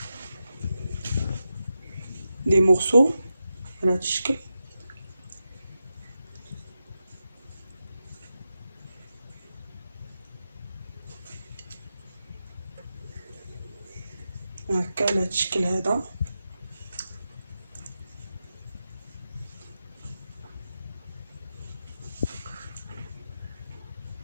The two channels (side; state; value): both; inverted; correlation -0.89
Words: لي مورسو على هذا الشكل. هكا على هذا الشكل هذا.